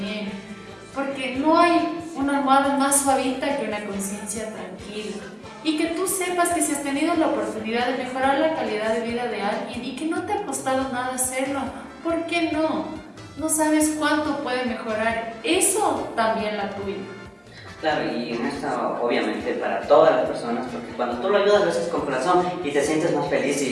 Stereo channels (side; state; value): both; identical; correlation 1.00